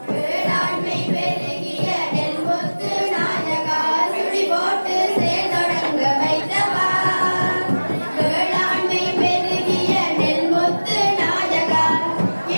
வேளாண்மை பெருகிய நெல்முத்து நாயகா சுழி போட்டு செயல்தொடங்க வைத்தவா. வேளாண்மை பெருகிய நெல்முத்து நாயகா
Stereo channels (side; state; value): both; inverted; correlation -1.00